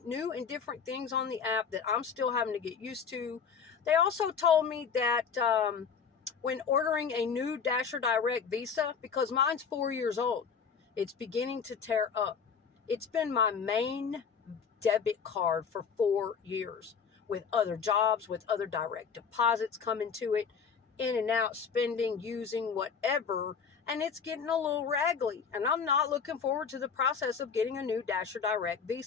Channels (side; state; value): right; quieter; 6.3 dB